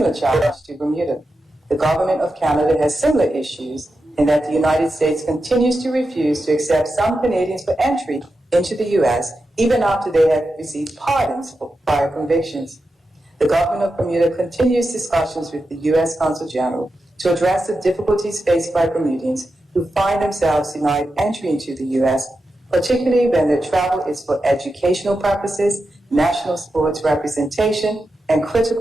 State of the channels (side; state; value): both; normal; correlation 0.89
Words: challenge to Bermuda. The government of Canada has similar issues in that the United States continues to refuse to accept some Canadians for entry into the U.S. even after they have received pardons for prior convictions. The government of Bermuda continues discussions with the U.S. Consul General to address the difficulties faced by Bermudians who find themselves denied entry into the U.S., particularly when their travel is for educational purposes, national sports representation, and